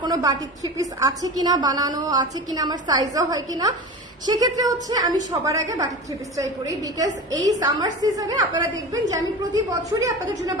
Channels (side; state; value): both; normal; correlation 0.31